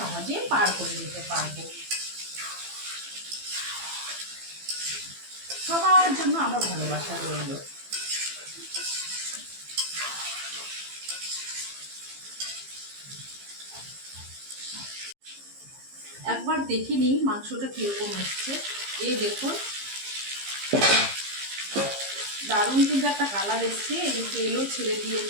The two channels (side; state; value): left; late; 15 ms